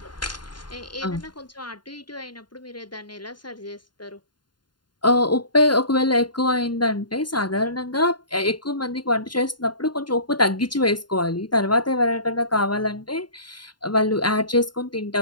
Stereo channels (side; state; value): right; late; 0.71 ms